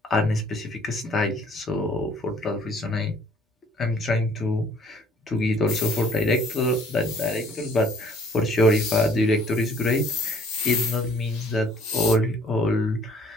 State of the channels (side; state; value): both; normal; correlation 0.58